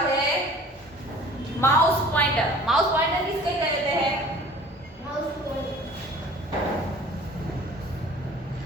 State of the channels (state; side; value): normal; both; correlation 0.47